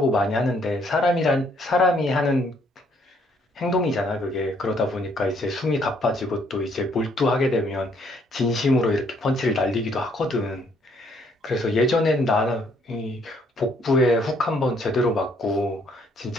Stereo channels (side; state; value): both; normal; correlation 0.67